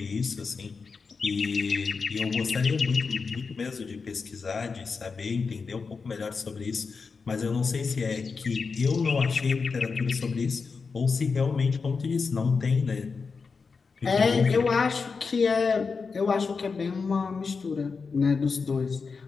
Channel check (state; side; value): quieter; right; 4.9 dB